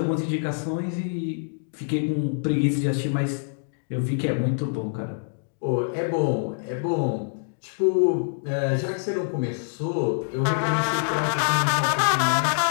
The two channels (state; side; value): silent; right; digital silence